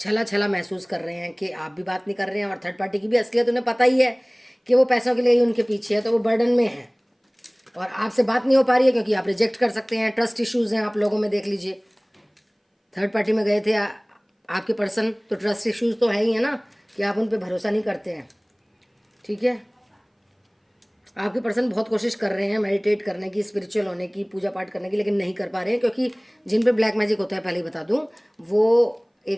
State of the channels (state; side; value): identical; both; correlation 1.00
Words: छला महसूस कर रहे हैं कि आप भी बात नहीं कर रहे हैं, और थर्ड पार्टी की भी असलियत उन्हें पता ही है कि वो पैसों के लिए ही उनके पीछे है, तो वो बर्डन में है और आपसे बात नहीं हो पा रही है क्योंकि आप रिजेक्ट कर सकते हैं। ट्रस्ट इश्यूज़ हैं आप लोगों में, देख लीजिए। थर्ड पार्टी में गए थे आपके पर्सन, तो ट्रस्ट इश्यूज़ तो है ही है ना, कि आप उन पर भरोसा नहीं करते हैं, ठीक है। आपके पर्सन बहुत कोशिश कर रहे हैं मेडिटेट करने की, स्पिरिचुअल होने की, पूजा पाठ करने की, लेकिन नहीं कर पा रहे हैं क्योंकि जिन पे ब्लैक मैजिक होता है, पहले ही बता दूं, वो